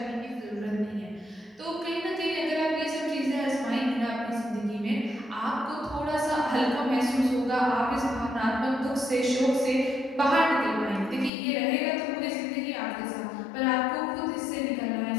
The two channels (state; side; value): drops out; right; at 11.3 s